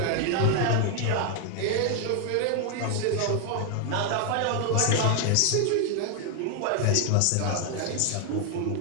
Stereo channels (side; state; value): both; different; correlation 0.00